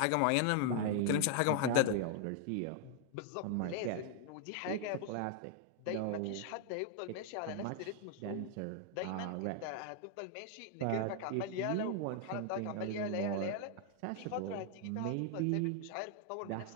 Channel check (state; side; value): different; both; correlation 0.00